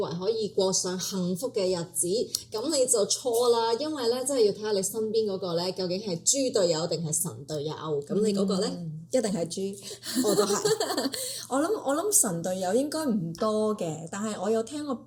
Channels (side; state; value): both; identical; correlation 1.00